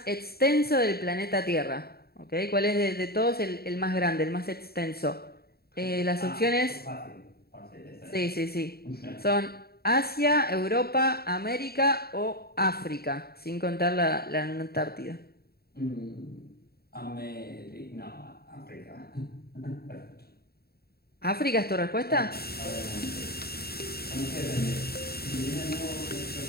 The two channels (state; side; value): late; right; 0.45 ms